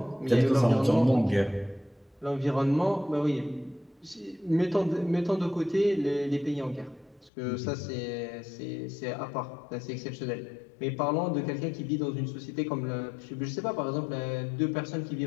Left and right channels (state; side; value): drops out; right; at 7.3 s